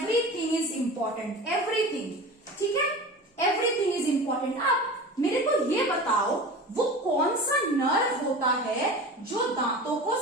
इज इंपॉर्टेंट, एवरीथिंग। ठीक है, एवरीथिंग इज इंपॉर्टेंट। अब मेरे को ये बताओ, वो कौन सा नर्व होता है जो दांतों को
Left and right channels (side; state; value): both; normal; correlation 0.34